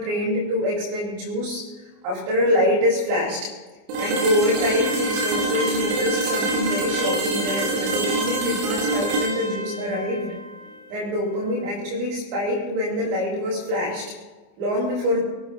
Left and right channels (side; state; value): left; late; 29 ms